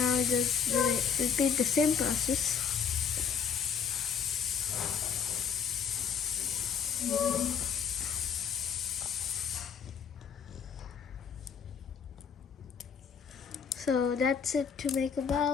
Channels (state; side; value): quieter; right; 6.9 dB